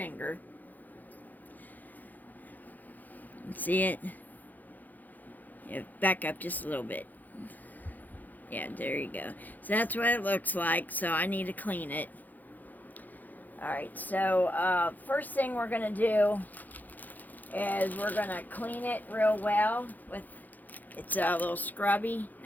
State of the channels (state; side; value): late; right; 0.083 ms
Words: See it? Yeah, back up just a little bit. Yeah, there you go. So that's what it looks like. So I need to clean it. Alright, so first thing we're going to do is we're going to clean it real well with, it's a little scrubby.